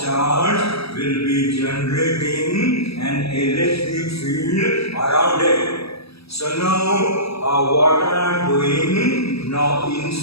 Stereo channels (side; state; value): right; late; 0.77 ms